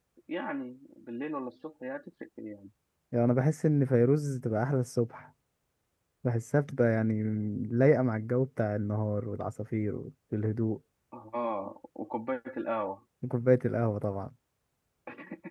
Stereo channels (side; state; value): both; identical; correlation 1.00